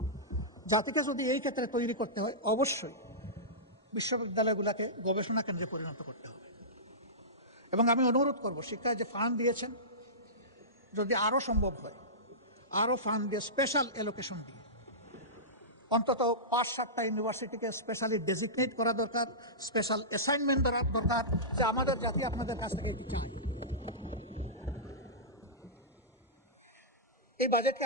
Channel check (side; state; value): both; normal; correlation -0.18